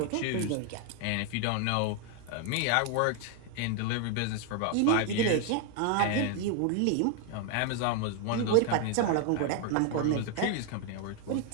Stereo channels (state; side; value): different; both; correlation 0.00